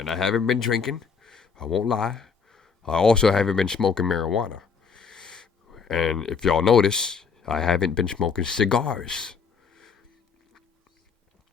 I haven't been drinking. I won't lie. I also haven't been smoking marijuana. And if y'all notice, I haven't been smoking cigars.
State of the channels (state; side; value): quieter; right; 5.7 dB